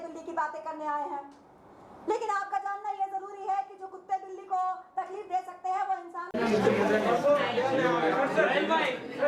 बिल्ली की बातें करने आए हैं, लेकिन आपका जानना ये जरूरी है कि जो कुत्ते बिल्ली को तकलीफ दे सकते हैं वो इंसान.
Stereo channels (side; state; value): both; identical; correlation 1.00